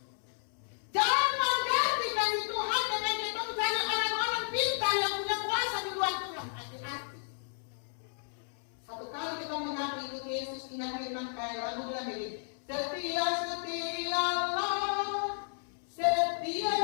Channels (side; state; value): right; silent; 56 dB below the other